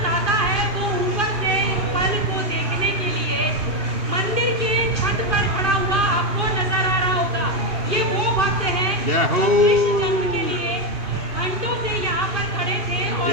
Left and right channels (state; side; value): late; left; 2.8 ms